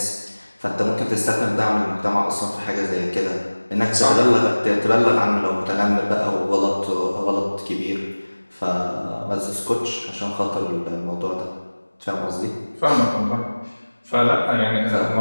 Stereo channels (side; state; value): both; inverted; correlation -1.00